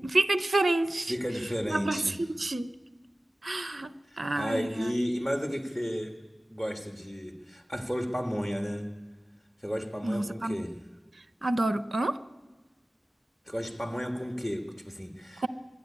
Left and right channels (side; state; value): both; normal; correlation 0.97